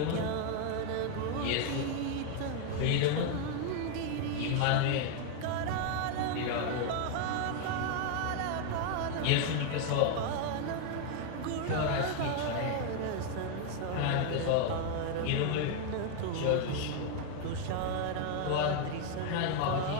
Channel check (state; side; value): different; both; correlation 0.01